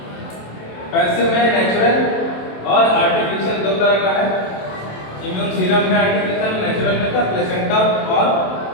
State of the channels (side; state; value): right; late; 27 ms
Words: पैसिव में नेचुरल और आर्टिफिशियल दो तरह का है। इम्यून सीरम में आर्टिफिशियल, नेचुरल में का प्लेसेंटा और